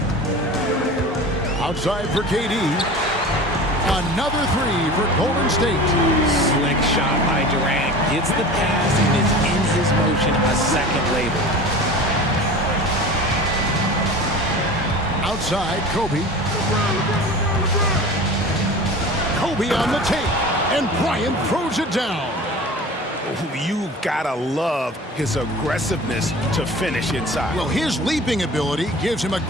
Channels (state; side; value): normal; both; correlation 0.37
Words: Outside for KD. Another three for Golden State. Slick shot by Durant. Gets the pass and is in his motion a second later. Outside, Kobe. Kobe on the tape. And Bryant throws it down. You gotta love his aggressiveness to finish inside. Well, his leaping ability gives him a